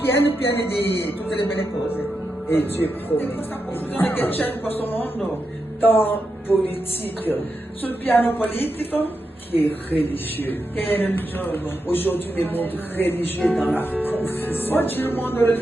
di tutte le belle cose. Et Dieu E promet. questa confusione che c'è in questo mondo, Tant politique sul piano politico qui est religieux. che è religioso. Aujourd'hui, le monde religieux est dans la confusion. Oggi il mondo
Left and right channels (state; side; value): normal; both; correlation 0.87